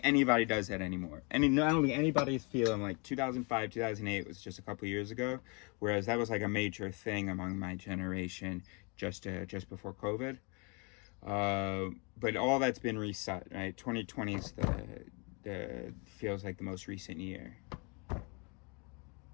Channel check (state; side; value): quieter; right; 32.3 dB